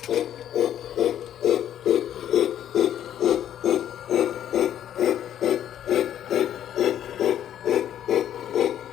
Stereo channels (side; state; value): right; quieter; 10.7 dB